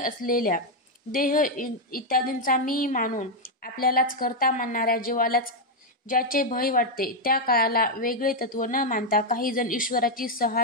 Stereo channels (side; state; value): both; normal; correlation 0.02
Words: देह इत्यादींचा मी मानून आपल्यालाच करता मानणाऱ्या जीवालाच ज्याचे भय वाटते त्या काळाला वेगळे तत्व न मानता काही जण ईश्वराची